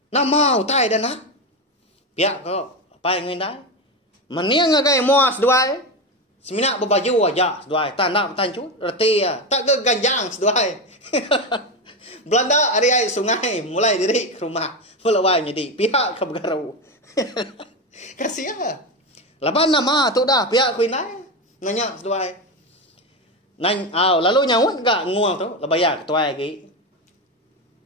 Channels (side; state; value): both; normal; correlation 0.16